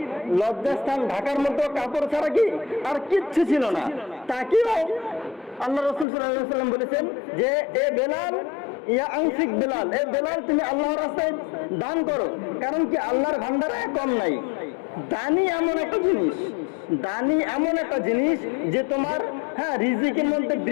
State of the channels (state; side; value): drops out; right; at 6.1 s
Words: লজ্জাস্থান ঢাকার মতো কাপড় ছাড়া কি আর কিচ্ছু ছিল না, তাকেও আল্লাহ রাসূল সাল্লাল্লাহু আলাইহি ওয়াসাল্লাম বলেছেন যে এ বেলাল, ইয়া আনফিক বেলাল, এ বেলাল তুমি আল্লাহর রাস্তায় দান করো, কারণ কি আল্লাহর ভান্ডারে কম নাই। দানি এমন একটা জিনিস, দানি এমন একটা জিনিস যে তোমার রিজিকের মধ্যে